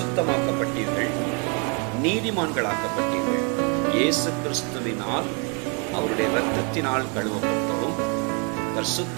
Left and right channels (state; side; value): quieter; left; 34.0 dB